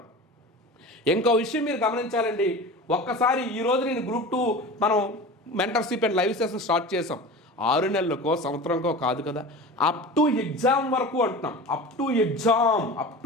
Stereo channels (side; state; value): both; normal; correlation 0.34